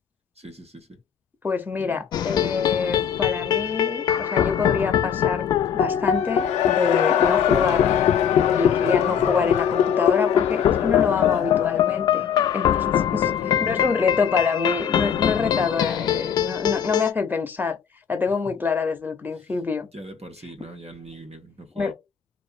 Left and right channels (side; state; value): right; quieter; 7.5 dB